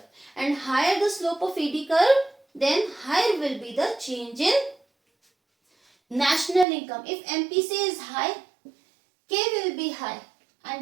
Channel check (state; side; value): drops out; left; at 6.7 s